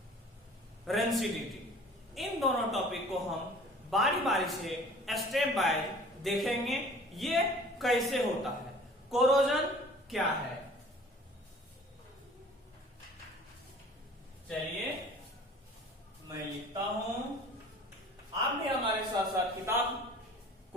रेंसिडिटी। इन दोनों टॉपिक को हम बारी बारी से स्टेप बाय देखेंगे ये कैसे होता है। कोरोजन क्या है, चलिए मैं लिखता हूं। आप भी हमारे साथ साथ किताब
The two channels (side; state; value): both; normal; correlation 0.47